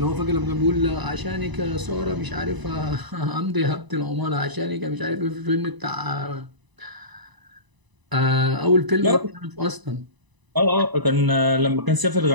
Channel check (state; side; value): late; left; 1.0 ms